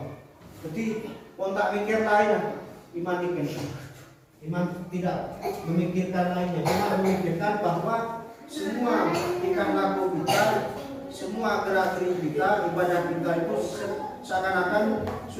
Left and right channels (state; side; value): identical; both; correlation 1.00